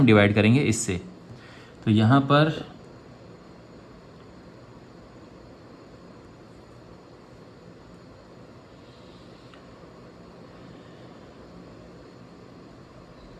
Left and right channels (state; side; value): identical; both; correlation 1.00